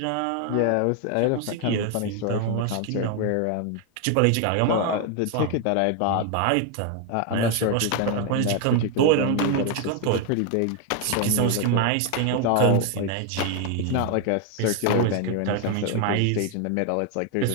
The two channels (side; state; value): both; different; correlation 0.01